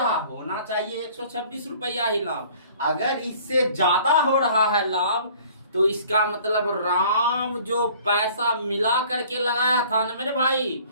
होना चाहिए 126 रुपया ही लाभ। अगर इससे ज्यादा हो रहा है लाभ, तो इसका मतलब राम जो पैसा मिला करके लगाया था ना मेरे भाई,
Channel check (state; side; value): inverted; both; correlation -0.52